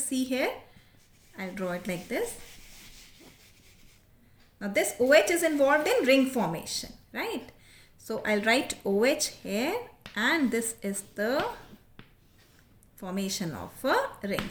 see here, I'll draw it like this. Now, this OH is involved in ring formation, right? So, I'll write OH here and this is the formation of a ring.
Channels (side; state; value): both; identical; correlation 1.00